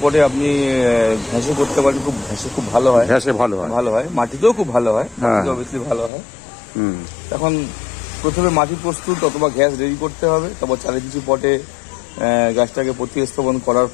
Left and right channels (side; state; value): right; drops out; at 6.1 s